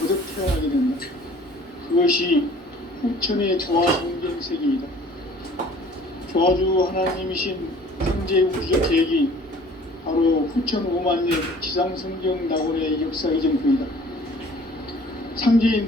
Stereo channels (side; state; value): both; normal; correlation 0.51